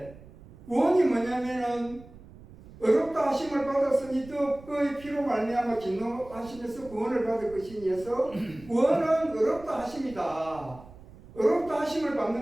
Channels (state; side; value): noise; right; rumble, 20 dB below the sound